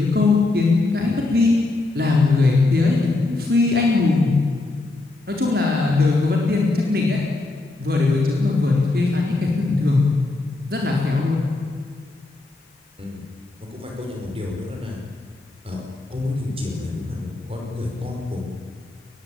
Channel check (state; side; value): quieter; right; 3.1 dB